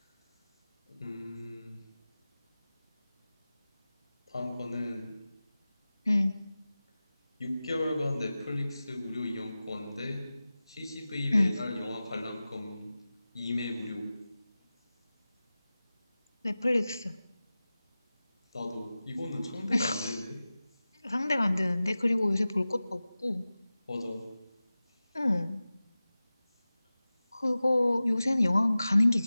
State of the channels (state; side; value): inverted; both; correlation -0.96